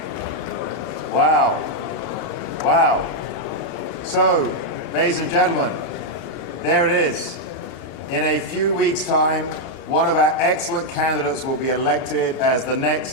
Wow. So, ladies and gentlemen, there it is. In a few weeks' time, one of our excellent candidates will be elected as the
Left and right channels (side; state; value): right; late; 2.8 ms